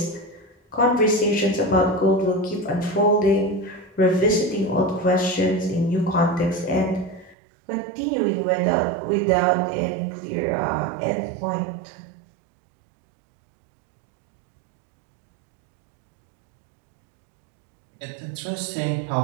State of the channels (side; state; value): left; drops out; at 7.4 s